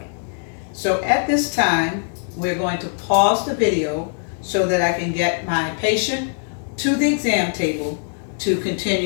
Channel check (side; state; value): right; silent; 65 dB below the other